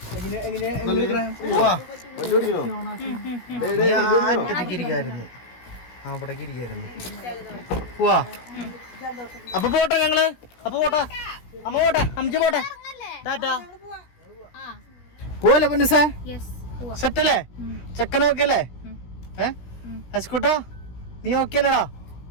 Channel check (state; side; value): late; right; 17 ms